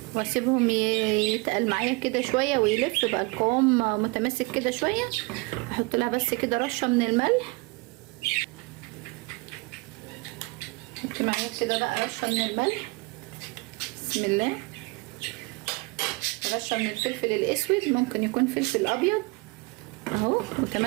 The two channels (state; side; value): quieter; left; 26.9 dB